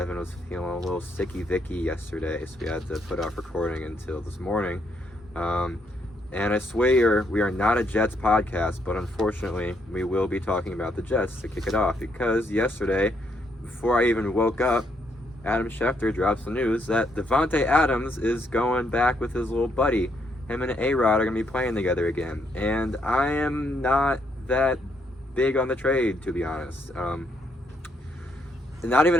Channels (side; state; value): both; normal; correlation 0.74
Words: was feeling a little sicky-vicky yesterday, so we had to put off recording until this morning. And I swear we are not a Jets podcast, but unfortunately we will be talking about the Jets to kick it off, because yesterday, before I even woke up, Adam Schefter drops the news that DAVANTE Adams is going back with his little buddy. Him and A-Rod are going to be playing together again. And I am not that big on the trade, to be honest. Not even